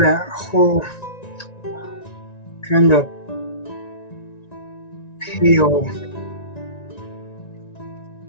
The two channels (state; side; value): late; right; 1.9 ms